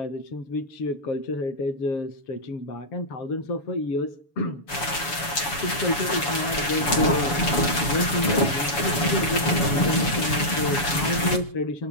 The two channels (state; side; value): late; right; 7.0 ms